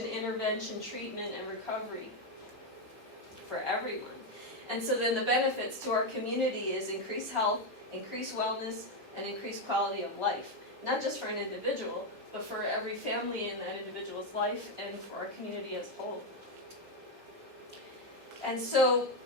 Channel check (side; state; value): both; normal; correlation 0.06